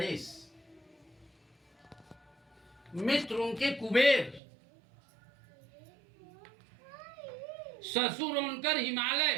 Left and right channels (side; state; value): left; drops out; at 4.4 s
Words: मित्र उनके कुबेर। ससुर उनकर हिमालय।